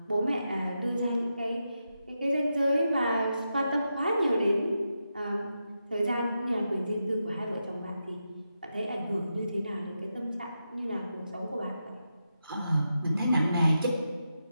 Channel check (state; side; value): inverted; both; correlation -0.87